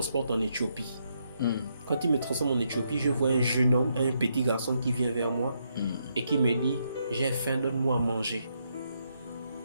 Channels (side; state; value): both; inverted; correlation -0.78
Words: en Éthiopie. Quand il me transforme en Éthiopie, je vois un jeune homme, un petit garçon qui vient vers moi et qui me dit « J'ai faim, donne-moi à manger